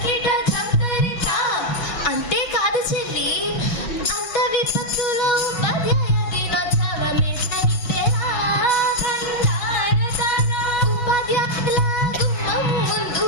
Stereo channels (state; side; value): late; right; 5.7 ms